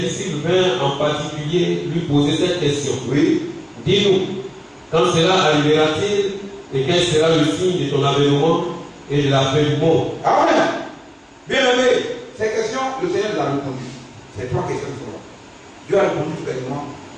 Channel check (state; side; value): identical; both; correlation 1.00